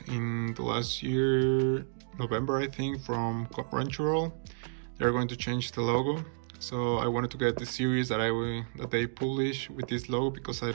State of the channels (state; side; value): silent; left; digital silence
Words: in the last year, November I think, from Crunchyroll, they're going to change the logo. So I wanted to get the series that they publish with this logo because I